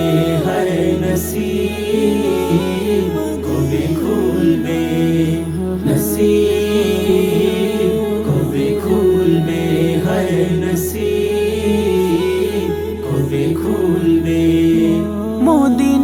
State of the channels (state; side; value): identical; both; correlation 1.00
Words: হায় নসিব কবে খুলবে, নসিব কবে খুলবে, হায় নসিব কবে খুলবে।